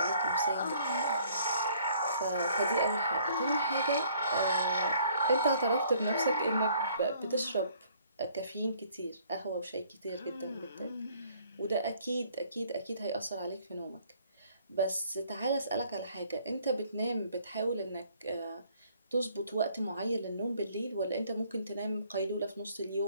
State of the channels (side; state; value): both; inverted; correlation -0.61